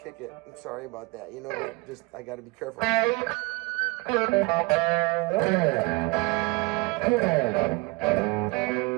it. I'm sorry about that. Just I got to be careful.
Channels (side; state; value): left; quieter; 25.2 dB